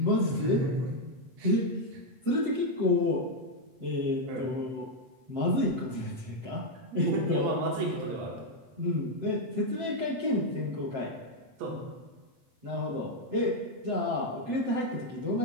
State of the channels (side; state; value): left; late; 7.6 ms